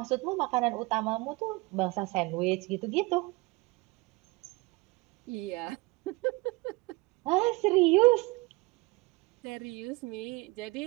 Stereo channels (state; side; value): quieter; left; 24.0 dB